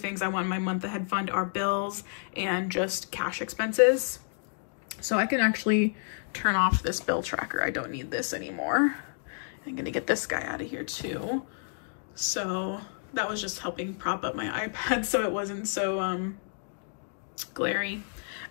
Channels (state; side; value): silent; right; digital silence